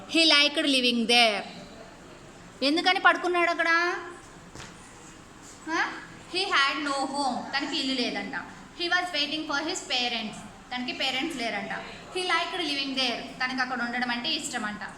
he liked living there. ఎందుకని పడుకున్నాడు అక్కడ? హీ హ్యాడ్ నో హోమ్, తనకి ఇల్లు లేదంట. He was waiting for his parents, తనకి పేరెంట్స్ లేరంట. హీ లైక్డ్ లివింగ్ దేర్, తనకి అక్కడ ఉండడం అంటే ఇష్టం అంట.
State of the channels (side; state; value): both; identical; correlation 1.00